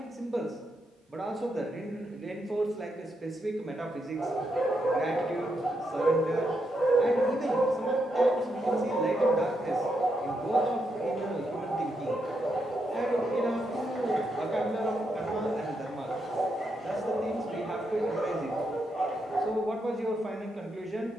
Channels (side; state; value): both; normal; correlation 0.81